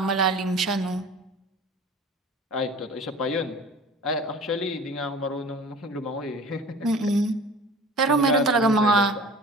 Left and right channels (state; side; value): normal; both; correlation 0.41